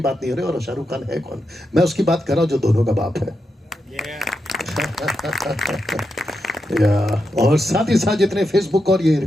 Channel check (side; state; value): both; normal; correlation 0.86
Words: नहीं हो रही, और शाहरुख खान है कौन? मैं उसकी बात कर रहा हूं जो दोनों का बाप है। और साथ ही साथ जितने फेसबुक और ये